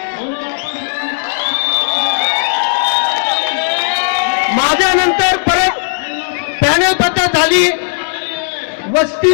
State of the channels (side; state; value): right; silent; digital silence